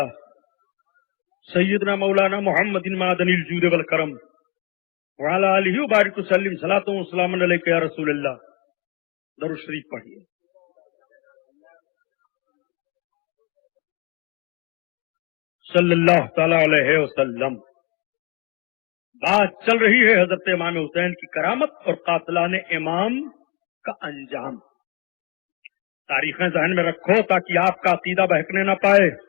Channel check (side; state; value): right; quieter; 30.3 dB